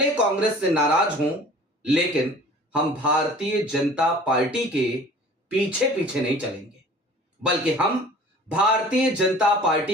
कांग्रेस से नाराज हों, लेकिन हम भारतीय जनता पार्टी के पीछे पीछे नहीं चलेंगे, बल्कि हम भारतीय जनता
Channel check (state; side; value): normal; both; correlation 0.46